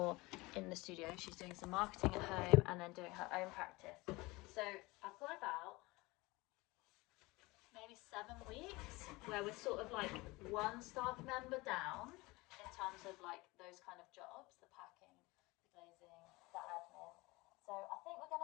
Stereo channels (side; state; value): right; quieter; 22.5 dB